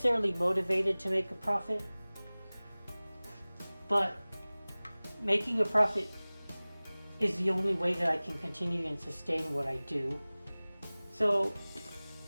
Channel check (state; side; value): inverted; both; correlation -0.99